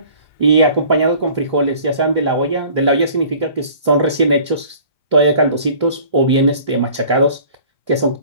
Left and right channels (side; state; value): both; inverted; correlation -0.49